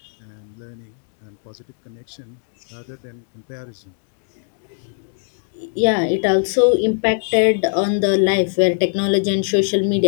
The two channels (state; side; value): silent; right; digital silence